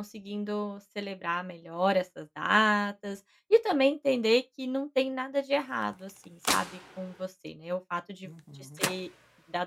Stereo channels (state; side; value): identical; both; correlation 1.00